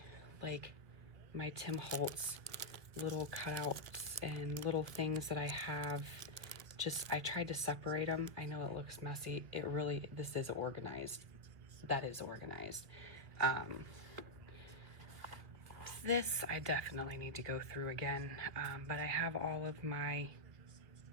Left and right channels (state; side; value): late; left; 1.3 ms